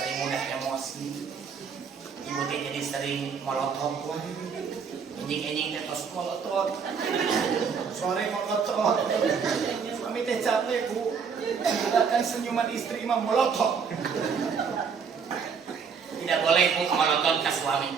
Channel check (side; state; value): left; quieter; 6.2 dB